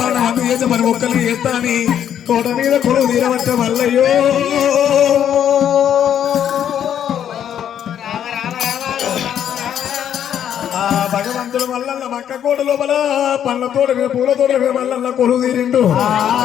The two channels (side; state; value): right; quieter; 9.6 dB